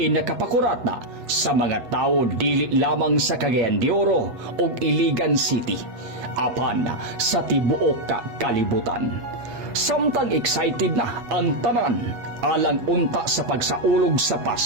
nakapakurata sa mga tao dili lamang sa Cagayan de Oro ug Iligan City apan sa tibuok kalibutan. Samtang excited na ang tanan alang unta sa pagsaulog sa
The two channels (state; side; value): late; left; 8.2 ms